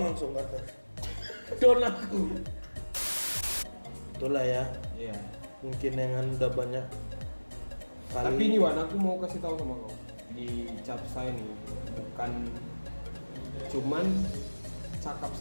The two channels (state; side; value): inverted; both; correlation -1.00